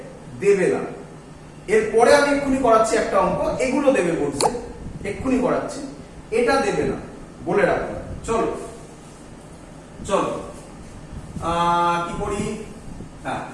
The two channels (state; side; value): identical; both; correlation 1.00